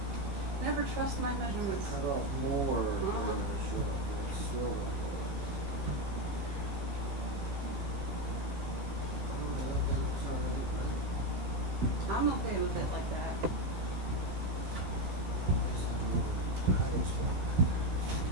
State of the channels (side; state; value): left; late; 15 ms